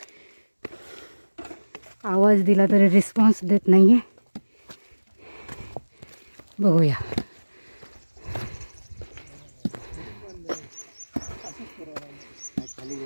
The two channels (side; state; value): both; inverted; correlation -1.00